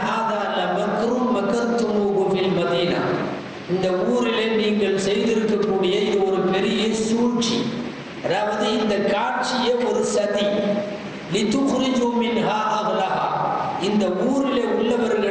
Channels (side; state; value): both; identical; correlation 1.00